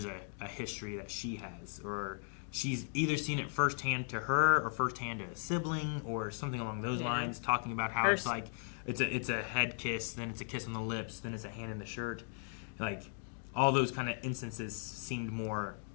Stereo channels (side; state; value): right; silent; 53 dB below the other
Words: a history that she has, or she's either seen it firsthand to her or firsthand to a sibling or something along those lines, talking about how it's like it's a head kiss, then it's a kiss on the lips, then it's a hand in the shirt. Like all those kind of instances seemed more